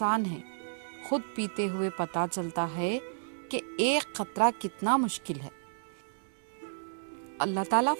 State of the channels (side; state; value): left; silent; digital silence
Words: ہے، خود پیتے ہوئے پتہ چلتا ہے کہ ایک قطرہ کتنا مشکل ہے۔ اللہ تعالیٰ